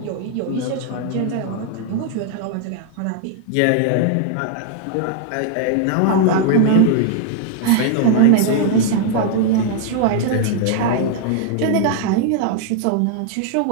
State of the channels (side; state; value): both; different; correlation 0.00